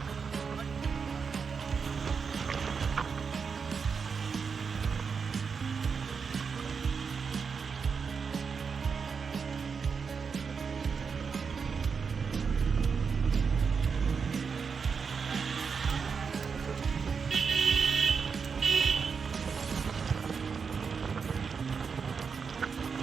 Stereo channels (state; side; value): quieter; left; 5.7 dB